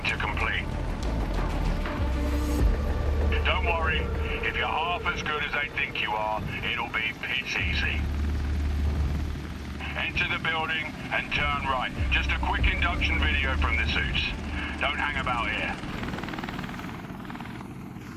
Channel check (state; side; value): identical; both; correlation 1.00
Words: to complete. Don't worry, if you're half as good as they think you are, it'll be pitch easy. Enter the building and turn right. Just a quick induction video from the suits. Don't hang about here.